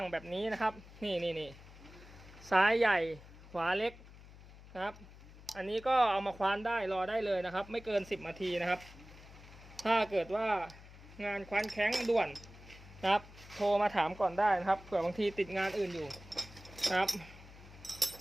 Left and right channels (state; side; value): noise; left; hum, 19 dB below the sound